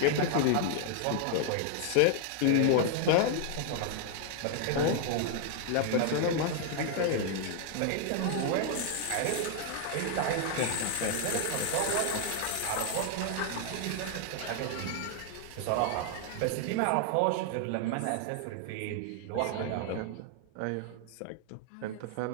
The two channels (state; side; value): different; both; correlation 0.00